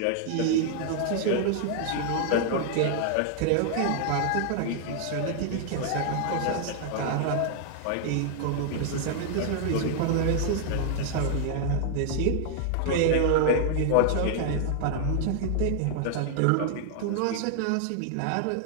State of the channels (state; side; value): different; both; correlation 0.00